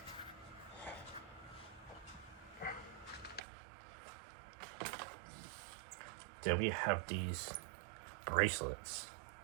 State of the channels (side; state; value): left; drops out; at 3.4 s